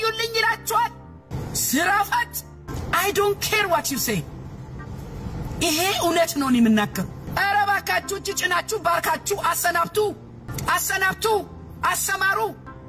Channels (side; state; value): both; identical; correlation 1.00